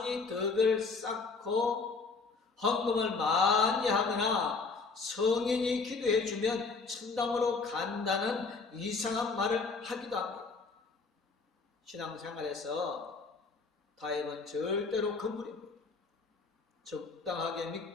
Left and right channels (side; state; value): right; quieter; 4.3 dB